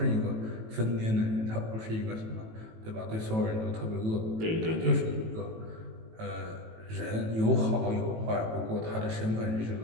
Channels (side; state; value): left; late; 18 ms